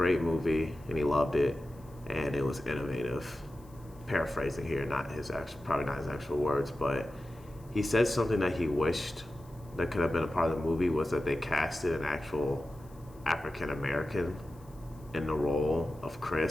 movie and he loved it, and it was innovative. Paraphrasing here, probably not his actual words, but he said something that he wished that could have been a part of the movie was that they casted an actual African American in the role of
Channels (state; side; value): noise; left; hiss, 28 dB below the sound